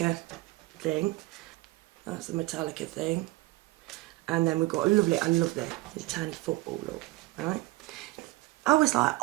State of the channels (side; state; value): left; quieter; 20.4 dB